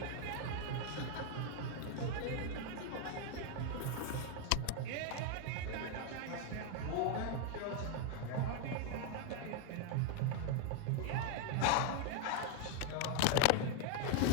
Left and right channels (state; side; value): different; both; correlation 0.01